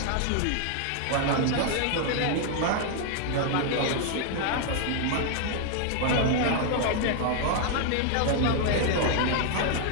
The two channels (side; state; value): both; different; correlation 0.00